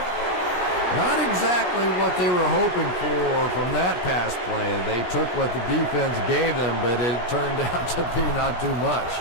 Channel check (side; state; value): right; late; 17 ms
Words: Not exactly what they were hoping for from that pass play. They took what the defense gave them, but it turned out to be not too much.